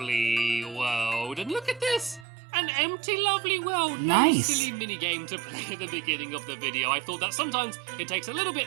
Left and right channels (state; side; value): drops out; left; at 2.2 s